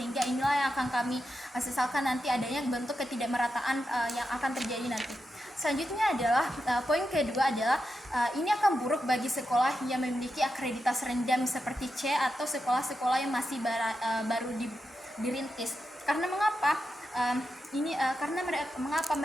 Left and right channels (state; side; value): normal; both; correlation 0.87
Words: inilah yang akan kami sesalkan nanti adanya bentuk ketidakmerataan yang akan terjadi nanti. Selanjutnya adalah poin kedua adalah ini akan buruk bagi sekolah yang memiliki akreditas rendah seperti C atau sekolah-sekolah yang masih baru dirintis. Karena mengapa? Mengapa